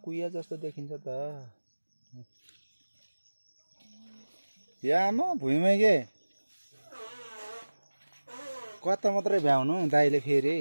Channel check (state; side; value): inverted; both; correlation -1.00